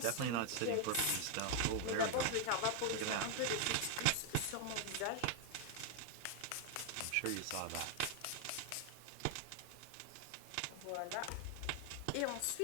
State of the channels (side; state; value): both; different; correlation 0.00